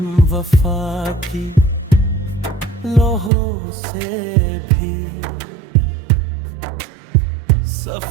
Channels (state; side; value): drops out; left; at 3.3 s